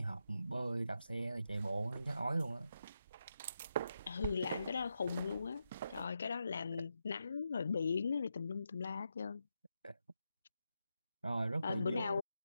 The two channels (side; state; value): both; inverted; correlation -0.86